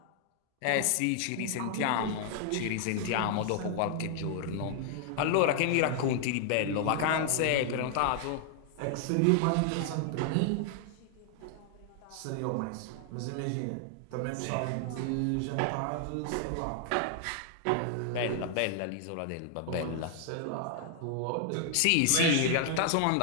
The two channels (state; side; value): different; both; correlation 0.00